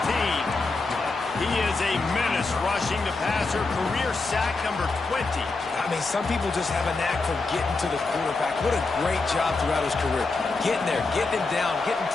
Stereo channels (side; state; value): right; quieter; 3.7 dB